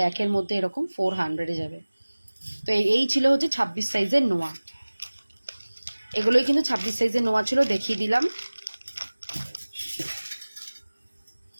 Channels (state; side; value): inverted; both; correlation -1.00